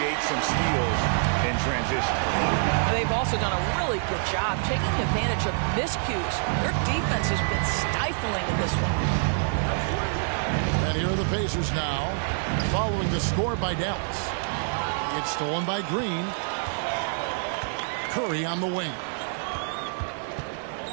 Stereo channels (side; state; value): left; silent; digital silence